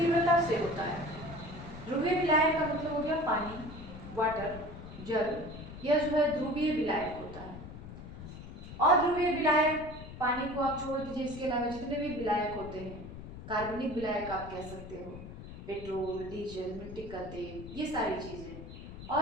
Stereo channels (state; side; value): noise; left; rumble, 12 dB below the sound